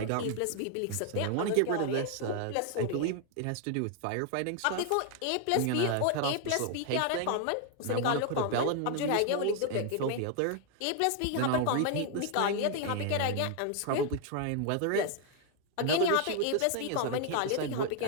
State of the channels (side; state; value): both; different; correlation 0.00